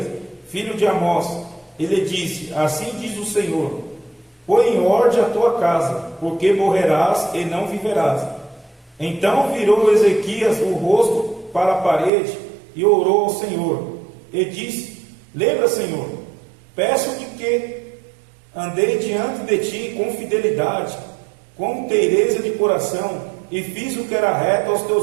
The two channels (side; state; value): left; drops out; at 12.1 s